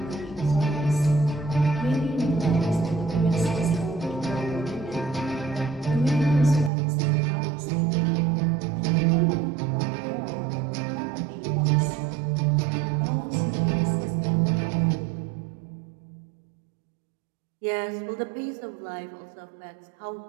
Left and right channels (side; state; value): left; drops out; at 6.7 s